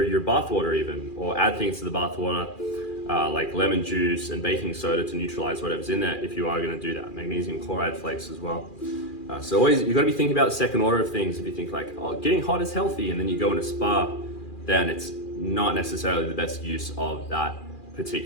your bath water even, or add things to the bath water, like lemon juice and baking soda to neutralize whatever's in there if you are gonna do that. Magnesium chloride flakes as well. So always, you've gotta be thinking about the second order of things. If you think like, oh, getting hot is healthy, and then you go in a spa, then it's not necessarily the best use of that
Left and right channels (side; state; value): right; late; 2.4 ms